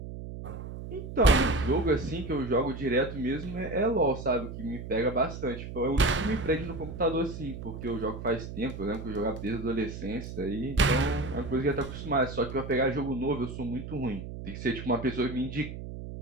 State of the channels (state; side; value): noise; right; hum, 9 dB below the sound